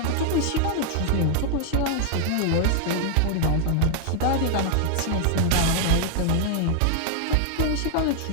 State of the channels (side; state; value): both; different; correlation 0.00